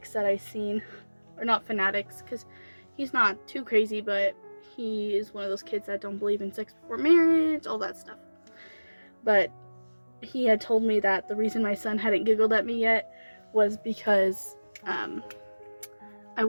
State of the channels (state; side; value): inverted; both; correlation -1.00